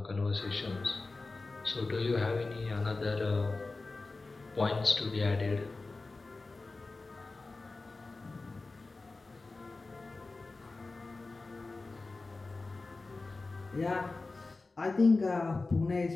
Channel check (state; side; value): quieter; right; 3.6 dB